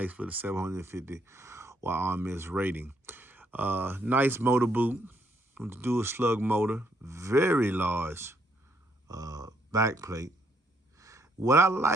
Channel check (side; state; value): both; normal; correlation 0.72